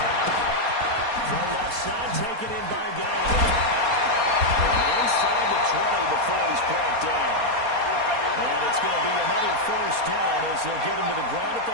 From left side, taken in by Galladay. Inside the 20 before he's brought down. And it's going to be another first down as they'll get him to the ground at the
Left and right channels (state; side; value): late; left; 4.2 ms